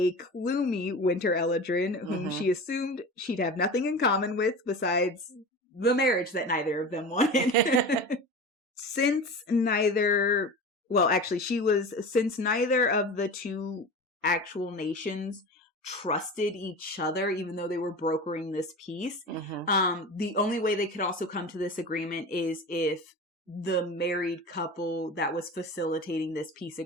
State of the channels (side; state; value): both; normal; correlation 0.31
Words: gloomy Winter Eladrin, whom she assumed she'd have nothing in common with besides the marriage that neither of them wanted. Since neither of the two actual nations trusted each other, even though they were brokering this peace. The only way they could also come to this agreement is if the married couple that was facilitating this peace